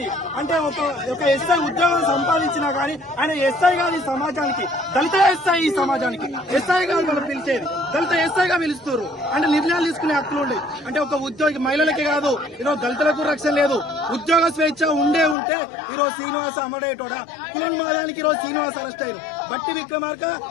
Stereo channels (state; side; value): drops out; right; at 15.4 s